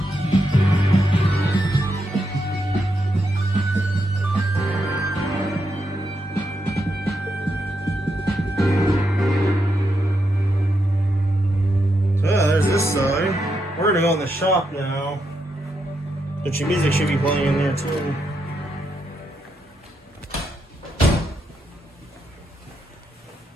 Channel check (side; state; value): both; normal; correlation 0.82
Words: This side. We're gonna go in the shop now. But your music should be playing in there too.